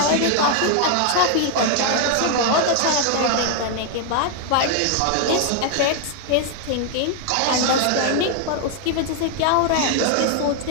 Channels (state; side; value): different; both; correlation 0.00